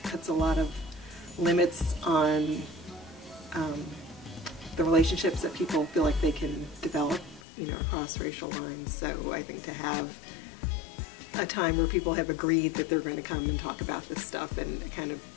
puts a lot of limits on the relationships that people feel like they can develop, across racial lines. So I think to have a time where people have agreed that they're going to come and talk about this stuff and kind of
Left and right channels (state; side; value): drops out; right; at 7.4 s